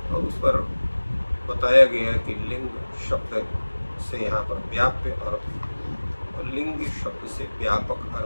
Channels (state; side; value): inverted; both; correlation -1.00